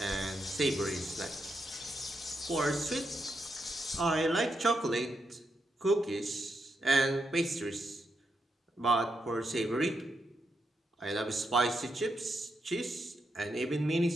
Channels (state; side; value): normal; both; correlation 0.82